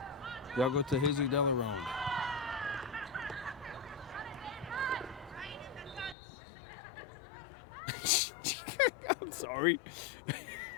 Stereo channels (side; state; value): right; drops out; at 6.2 s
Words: They'll go to Jesus Delarone. Sorry.